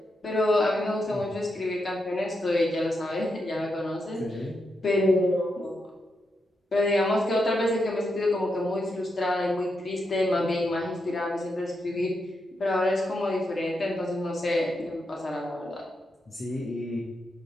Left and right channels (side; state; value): both; normal; correlation 0.84